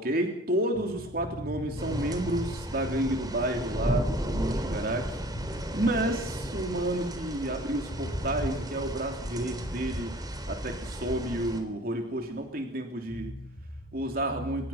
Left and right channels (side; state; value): both; normal; correlation 0.47